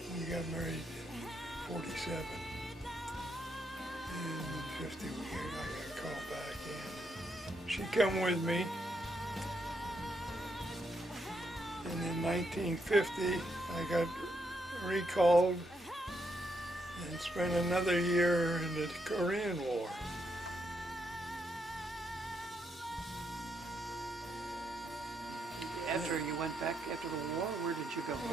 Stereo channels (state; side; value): normal; both; correlation 0.78